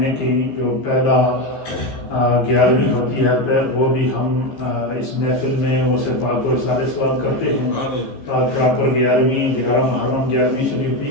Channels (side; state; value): right; late; 15 ms